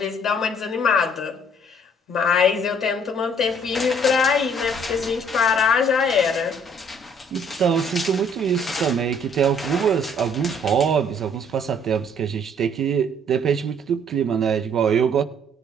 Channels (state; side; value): normal; both; correlation 0.60